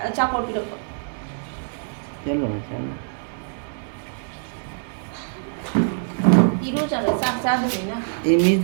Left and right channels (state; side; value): silent; left; digital silence